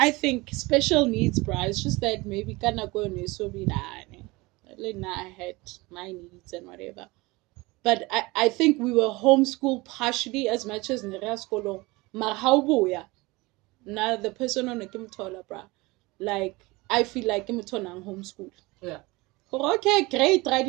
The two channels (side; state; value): left; quieter; 23.0 dB